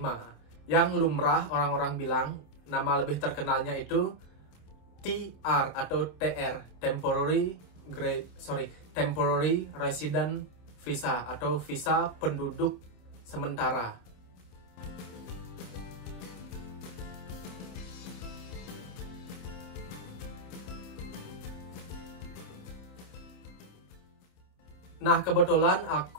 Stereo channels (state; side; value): late; right; 27 ms